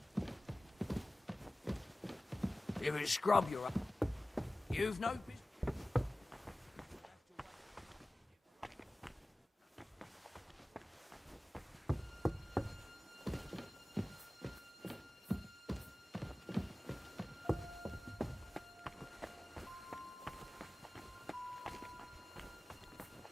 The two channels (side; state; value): both; normal; correlation 0.97